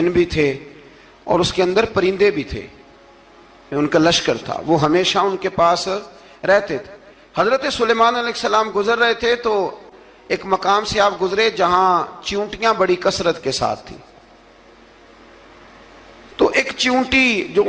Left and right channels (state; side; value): identical; both; correlation 1.00